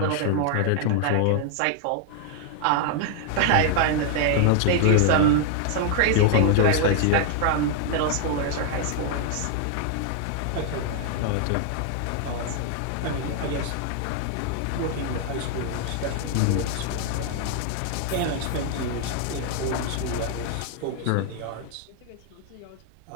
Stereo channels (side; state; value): both; different; correlation 0.00